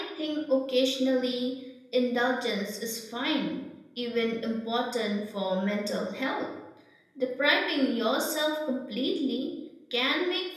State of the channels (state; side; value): identical; both; correlation 1.00